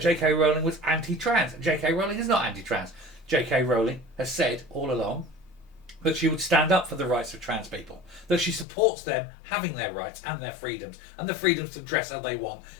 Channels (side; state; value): right; drops out; at 8.7 s